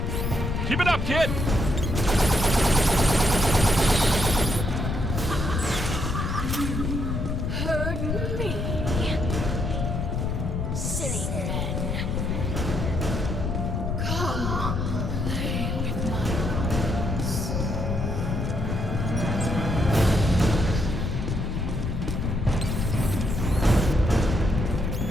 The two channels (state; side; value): noise; left; rumble, 1 dB below the sound